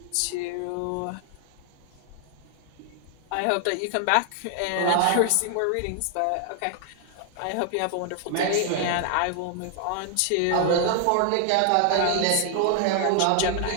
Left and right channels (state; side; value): different; both; correlation 0.00